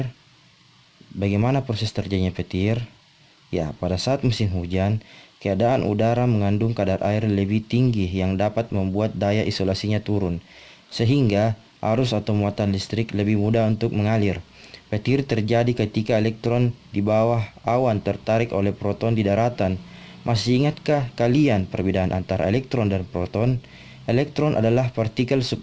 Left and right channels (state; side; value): identical; both; correlation 1.00